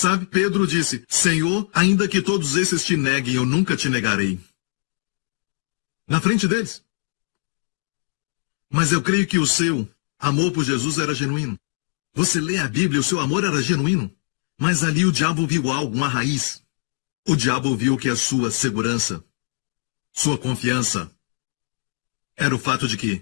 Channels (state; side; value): silent; right; 64 dB below the other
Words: Pedro disse, Senhor, ainda que todos esses te neguem, eu nunca te negarei. Na frente deles. Mas eu creio que o seu amor por Jesus era genuíno. Você lê a Bíblia, o seu amor era genuíno. Mas ali o diabo viu algo, uma raiz. O diabo viu que a sua segurança, sua confiança, era o fato de